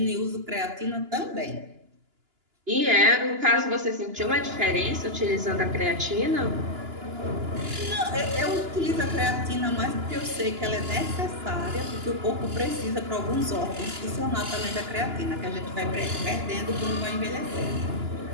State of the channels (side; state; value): left; late; 2.9 ms